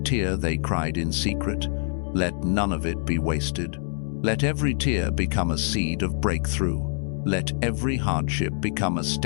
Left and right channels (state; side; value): silent; right; digital silence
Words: they cried in secret. Let none of it be wasted. Let every tear become a seed of breakthrough. Let every hardship become a